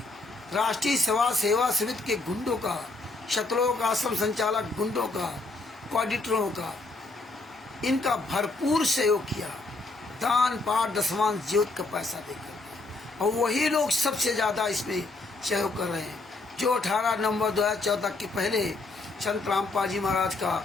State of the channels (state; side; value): quieter; right; 3.3 dB